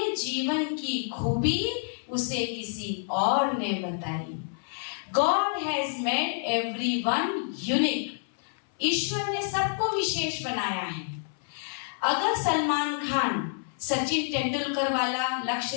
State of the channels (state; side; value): silent; right; 59 dB below the other